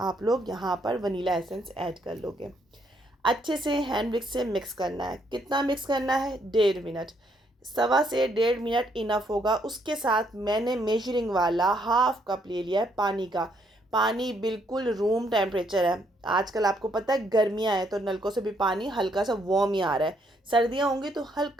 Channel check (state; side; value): normal; both; correlation 0.71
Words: लोग यहाँ पर वनीला एसेंस ऐड कर लोगे। अच्छे से हैंड विक्स से मिक्स करना है। कितना मिक्स करना है? 1.5 मिनट, 1.25 से 1.5 मिनट इनफ होगा। उसके साथ मैंने मेजरिंग वाला 1/2 कप ले लिया है पानी का। पानी बिल्कुल रूम टेम्परेचर है। आजकल आपको पता है गर्मियाँ हैं तो नलकों से भी पानी हल्का सा वार्म ही आ रहा है। सर्दियाँ होंगी तो